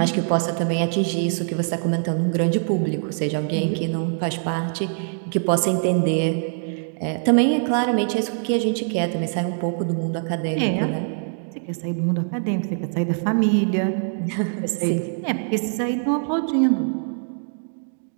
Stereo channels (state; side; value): silent; left; digital silence